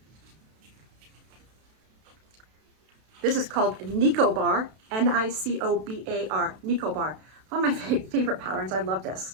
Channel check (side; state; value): left; late; 32 ms